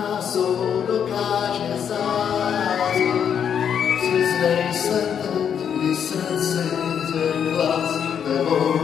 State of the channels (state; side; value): quieter; right; 8.1 dB